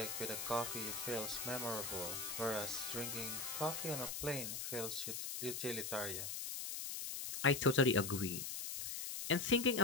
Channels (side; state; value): left; noise; hiss, 4 dB below the sound